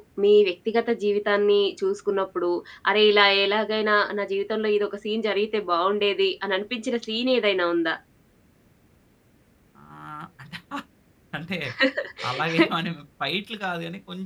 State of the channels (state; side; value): identical; both; correlation 1.00